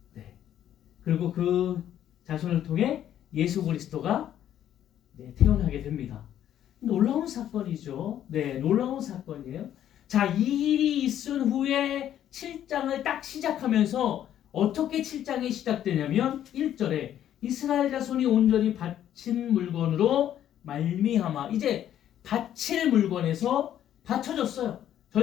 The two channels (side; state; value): right; quieter; 11.0 dB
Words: 네. 그리고 그 자손을 통해 예수 그리스도가 태어나게 됩니다. 놀라운 사건이죠. 네, 놀라운 사건이에요. 자, 이 일이 있은 후에 7장을 딱 시작하면서 어떻게 7장이 시작되냐면 1절에 이스라엘 자손이 온전히 바친 물건으로 말미암아, 이제 바칠 물건에서 바쳐졌어요.